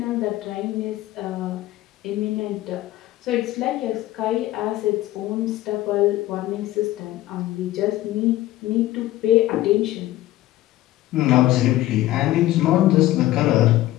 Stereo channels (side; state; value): right; quieter; 15.6 dB